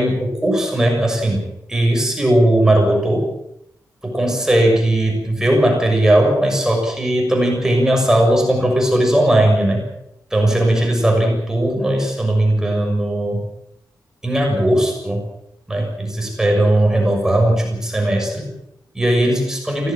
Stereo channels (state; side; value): normal; both; correlation 0.90